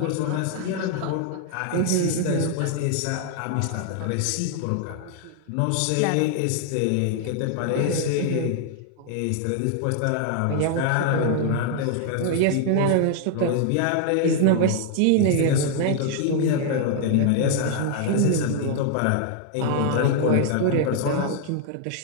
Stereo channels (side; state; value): both; different; correlation 0.00